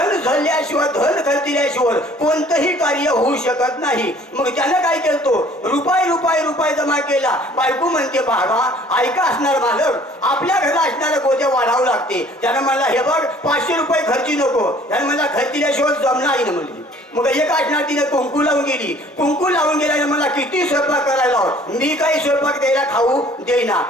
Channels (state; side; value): normal; both; correlation 0.54